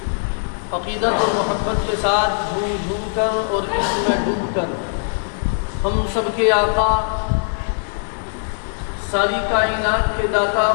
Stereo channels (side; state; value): right; silent; digital silence